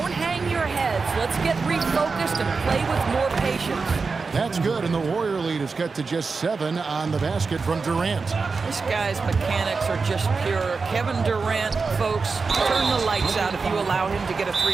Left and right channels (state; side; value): quieter; left; 4.6 dB